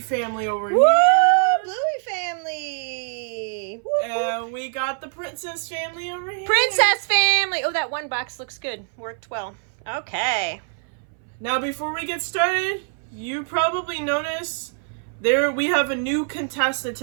family over Woo! here. Bluey family! Woo, And we got the Princess family over here. Princess family! Oh, that one box looks good. Worked well. Okay. Now before we get started, you probably noticed we have a new contestant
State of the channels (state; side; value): silent; left; 60 dB below the other